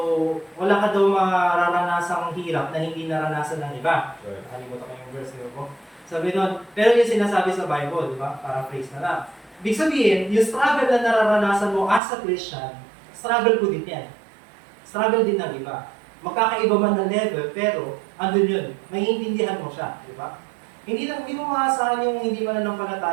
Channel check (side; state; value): left; drops out; at 12.0 s